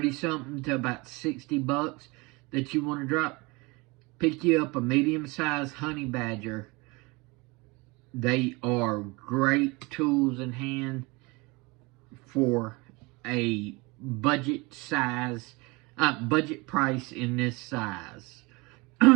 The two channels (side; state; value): left; quieter; 25.5 dB